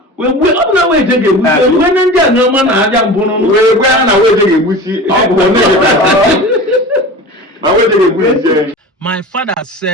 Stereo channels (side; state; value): both; normal; correlation 0.34